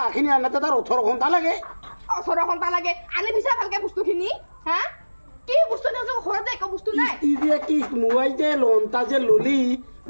আনতে তাৰ 18 ঘণ্টা লাগে 18 ঘণ্টা লাগে আনি দিছা ভালকে বস্তুখিনি হা কি বস্তু নাই ঘৰতে একো বস্তু নাই কি মোবাইল যে লোনটা যে ললি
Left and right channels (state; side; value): inverted; both; correlation -1.00